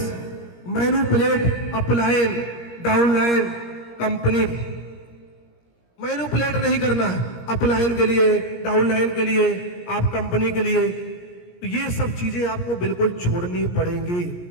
manipulate upline, downline, company. Manipulate नहीं करना है अपलाइन के लिए, डाउनलाइन के लिए, आप कंपनी के लिए। तो ये सब चीजें आपको बिल्कुल छोड़नी पड़ेंगी,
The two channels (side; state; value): right; late; 17 ms